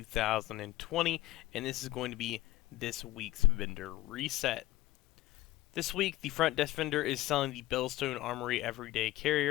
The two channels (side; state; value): right; quieter; 16.7 dB